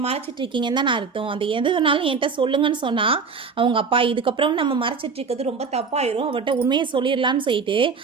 மறைச்சிட்டு இருக்கீங்கன்னு தான் நான் அர்த்தம். அந்த எது வேணாலும் என்கிட்ட சொல்லுங்கன்னு சொன்னால் அவங்க அப்பா இதுக்கப்புறம் நம்ம மறைச்சிட்டு இருக்கிறது ரொம்ப தப்பாயிரும், அவட்ட உண்மையை சொல்லிடலான்னு சொல்லிட்டு,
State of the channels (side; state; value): left; quieter; 5.2 dB